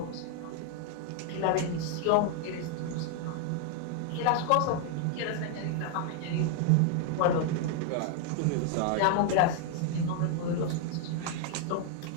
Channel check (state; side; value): different; both; correlation 0.00